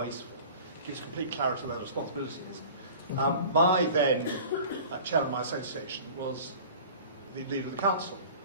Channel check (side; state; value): both; inverted; correlation -0.42